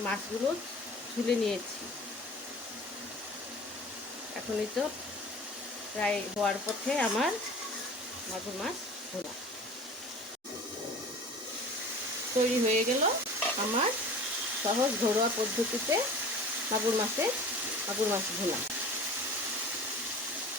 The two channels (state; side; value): normal; both; correlation 0.40